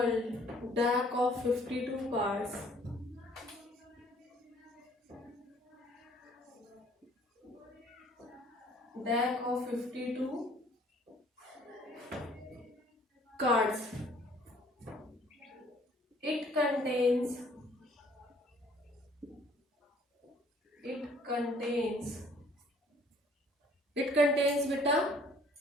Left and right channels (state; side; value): normal; both; correlation 0.58